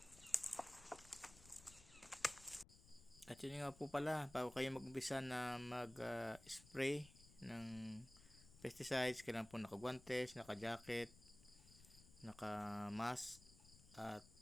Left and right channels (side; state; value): left; noise; rumble, 21 dB below the sound